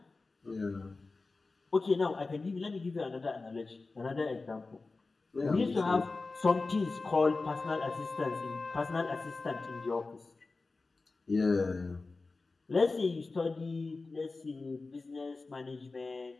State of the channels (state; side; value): quieter; right; 3.7 dB